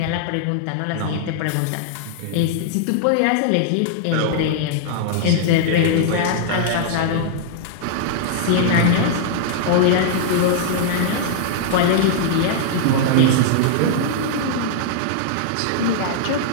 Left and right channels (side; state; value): both; different; correlation -0.01